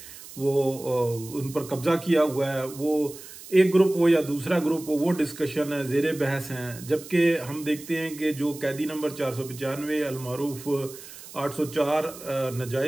वो उन पर कब्जा किया हुआ है। वो एक ग्रुप हो या दूसरा ग्रुप हो, वो डिस्कशन है, जेर बहस हैं। जबकि हम देखते हैं कि जो कैदी नंबर 495 अलमारूफ 804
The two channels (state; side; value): noise; right; hiss, 16 dB below the sound